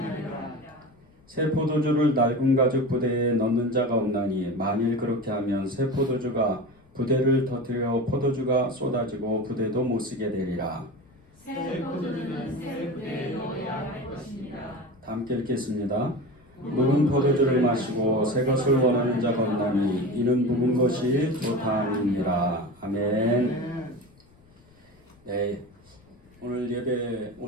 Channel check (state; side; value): noise; left; rumble, 29 dB below the sound